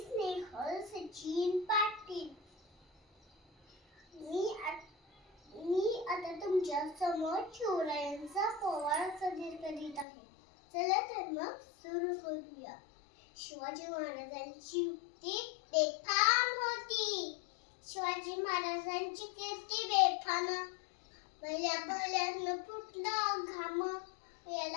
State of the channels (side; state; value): right; drops out; at 10.1 s